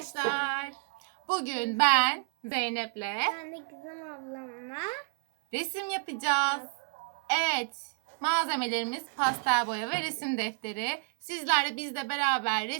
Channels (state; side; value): silent; left; 57 dB below the other